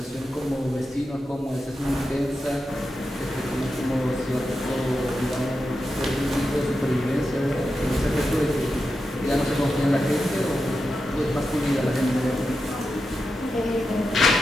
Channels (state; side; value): normal; both; correlation 0.89